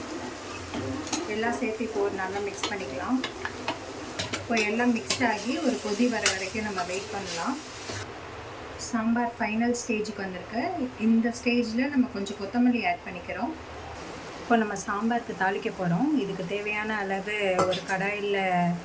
எல்லாம் சேர்த்து இப்போ நல்லா மிக்ஸ் பண்ணிக்கலாம். இப்போ எல்லாம் மிக்ஸ் ஆகி ஒரு கொதி வர வரைக்கும் நம்ம வெயிட் பண்ணலாம். சாம்பார் ஃபைனல் ஸ்டேஜுக்கு வந்திருக்கு. இந்த ஸ்டேஜில் நம்ம கொஞ்சம் கொத்தமல்லி ஆட் பண்ணிக்கிறோம். இப்போ நம்ம சாம்பாருக்கு தாளிக்க போகிறோம். இதுக்கு தேவையான அளவு ஒரு கடாயில்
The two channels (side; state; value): both; identical; correlation 1.00